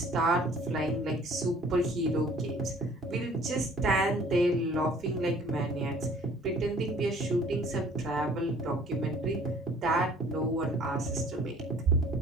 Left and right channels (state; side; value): normal; both; correlation 0.53